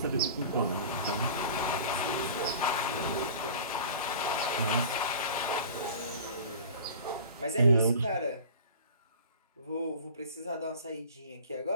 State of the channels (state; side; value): inverted; both; correlation -0.40